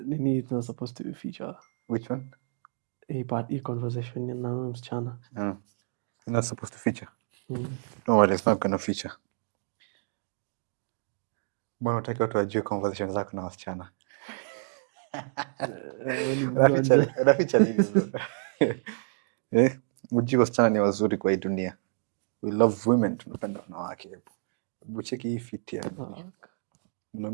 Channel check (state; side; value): silent; left; digital silence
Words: Nini is not supposed to be feature. Which one? Hii conversation na huyo msichana. You're not supposed to feature. No worries, it's not gonna feature. Mbona unataka watu wajue conversation zako na wasichana? Unaficha nini? Mjue wasichana ni wazuri kwa hii dunia. We love women, tunapenda wanawake. Hebu cheki hii fit ya.